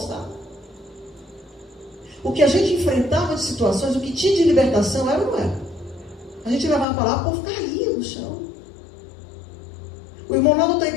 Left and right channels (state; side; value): drops out; right; at 6.9 s